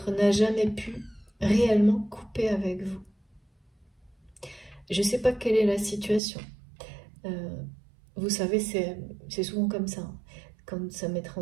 n'a jamais pu réellement couper avec vous. Je ne sais pas quelle est la situation. Vous savez, c'est souvent comme ça. Quand ça m'est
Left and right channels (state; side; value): drops out; left; at 6.2 s